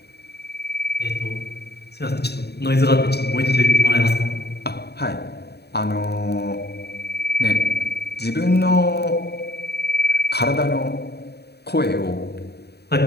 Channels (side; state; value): right; late; 0.48 ms